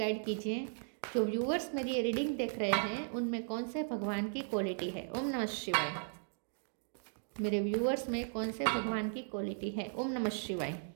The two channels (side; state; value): left; silent; digital silence